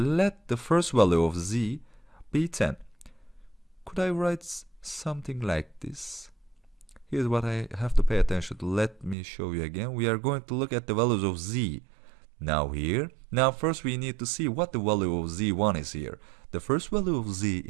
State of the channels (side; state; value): left; drops out; at 9.2 s